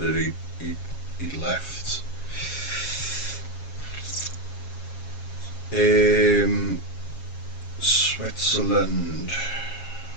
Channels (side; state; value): right; late; 7.4 ms